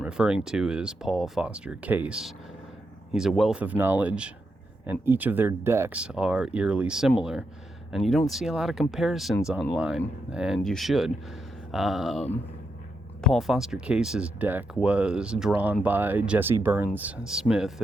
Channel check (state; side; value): normal; both; correlation 0.83